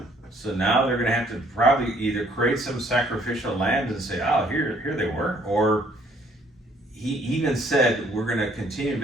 So now they're going to have to probably either create some sacrificial land and say, oh, here they were, or he even said, we're going to continue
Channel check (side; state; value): both; normal; correlation 0.62